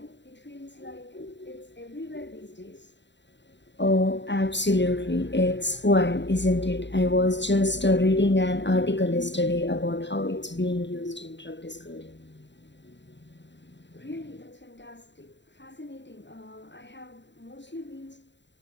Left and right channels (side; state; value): right; late; 0.52 ms